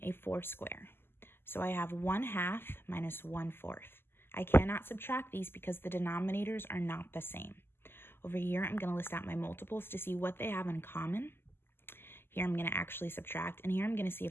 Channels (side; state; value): right; late; 0.11 ms